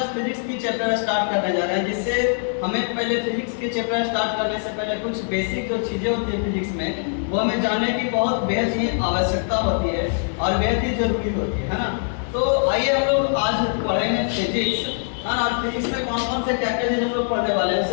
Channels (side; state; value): right; silent; 61 dB below the other